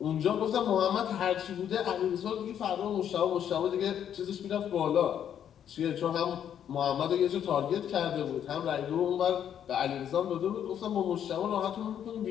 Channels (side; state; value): right; quieter; 9.4 dB